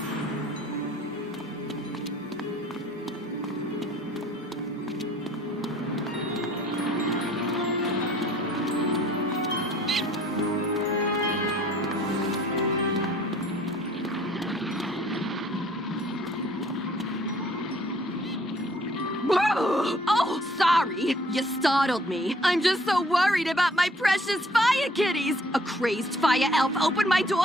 Oh, sorry. You startled me. I'm just so worried about my precious fire kitties. A crazed fire elf opened my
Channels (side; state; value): both; normal; correlation 0.58